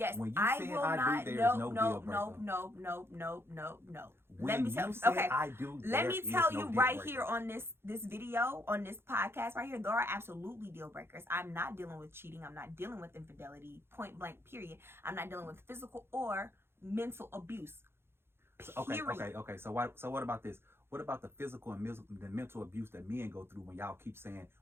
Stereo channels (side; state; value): left; late; 0.11 ms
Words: when you I say will I not. Do, there is no deal No. When Let me tell you say okay. I do, Let me tell you no right here on this video, on this podcast right here, there are absolutely deal breakers. I'm not dealing with cheating. I'm not dealing with infidelity. Point blank. Period. I'm not dealing with physical or mental abuse. Period. Okay. So what about this? What about the physical and the mental abuse that men go through when y'all keep saying